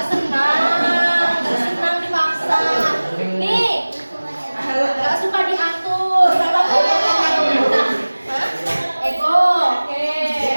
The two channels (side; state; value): both; inverted; correlation -1.00